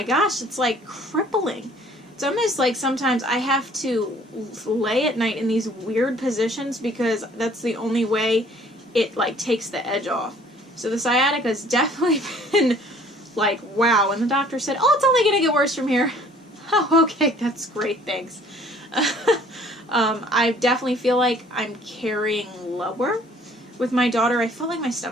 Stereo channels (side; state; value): both; normal; correlation 0.55